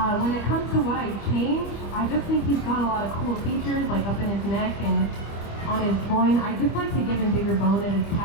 When it comes to what I change, I just think he's got a lot of cool features, like up in his neck and on his groin. I just like to give him bigger bone at his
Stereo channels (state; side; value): late; right; 25 ms